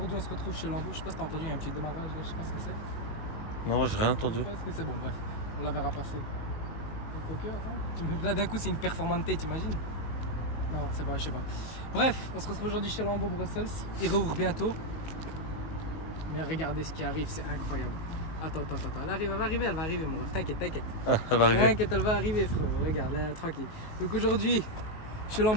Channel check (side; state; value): right; late; 19 ms